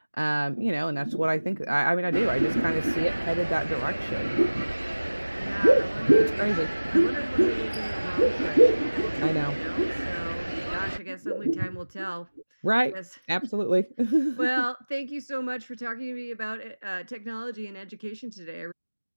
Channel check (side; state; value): both; inverted; correlation -1.00